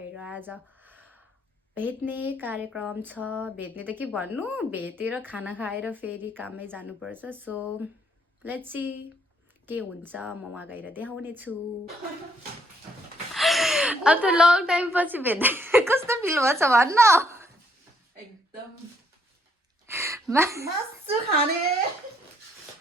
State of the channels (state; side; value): normal; both; correlation 0.69